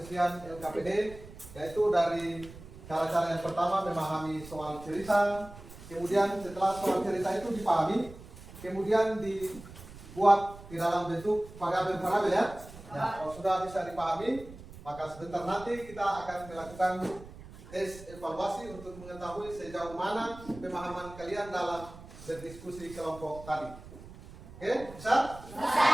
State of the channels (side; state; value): right; noise; rumble, 16 dB below the sound